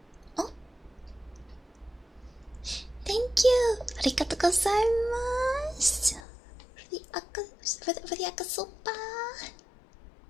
Oh, thank you. Arigatou gozaimasu. For the akasopa.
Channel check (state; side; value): drops out; right; at 6.2 s